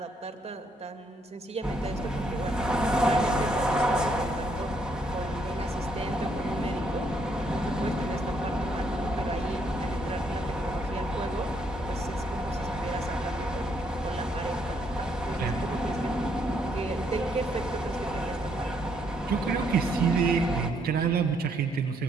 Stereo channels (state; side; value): normal; both; correlation 0.72